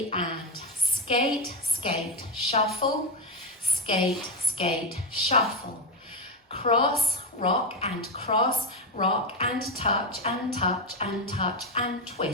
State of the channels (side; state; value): both; normal; correlation 0.10